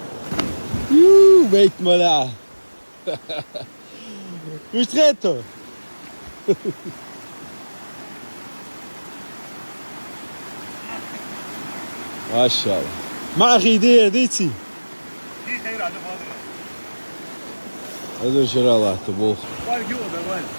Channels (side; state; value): both; inverted; correlation -1.00